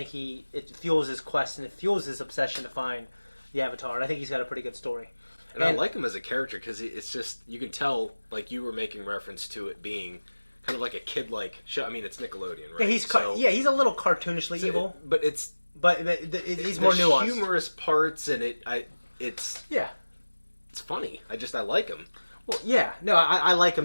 it fuels his quest, and it fuels his obsession to find the Avatar. And I think he's got a pretty good story. And I like him as a character because it's just, you can tell, you were making reference to it being kind of like a kid-like show. I mean, it's Nickelodeon, right? Yeah, he's a little cartoonishly evil. But it's... But he's more nuanced. Humorous parts, and it's... Yeah. It's funny. I like him. Well, yeah. No, I like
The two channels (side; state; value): both; inverted; correlation -1.00